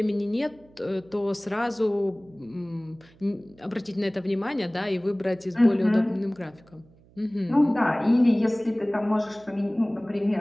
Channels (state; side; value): noise; right; hum, 28 dB below the sound